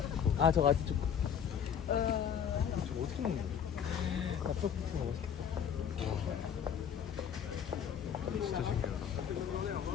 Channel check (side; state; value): right; quieter; 8.1 dB